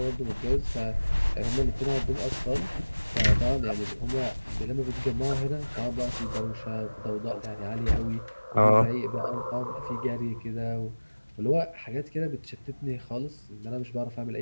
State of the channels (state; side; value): inverted; both; correlation -1.00